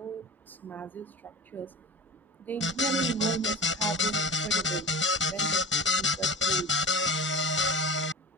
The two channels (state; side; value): normal; both; correlation 0.32